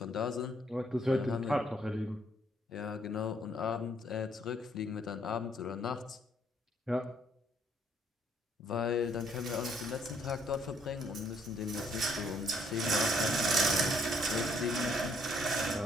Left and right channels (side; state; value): both; normal; correlation 0.68